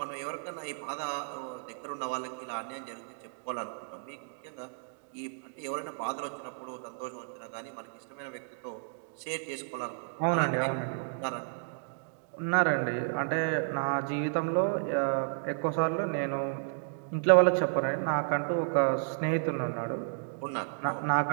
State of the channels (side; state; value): left; silent; digital silence